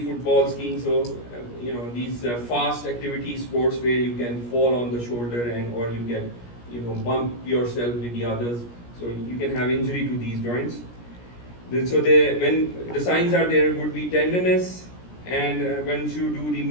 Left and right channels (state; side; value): late; right; 17 ms